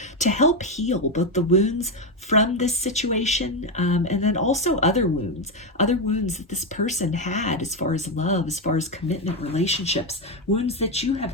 to help heal both the wounds from this situation, and then also other wounds that this person had as far as love, as far as commitment, relationships, wounds that you have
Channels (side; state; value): both; normal; correlation 0.08